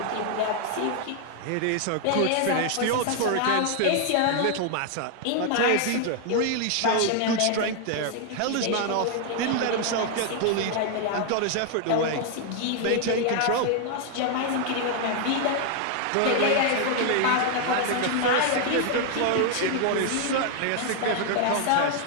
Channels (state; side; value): different; both; correlation 0.00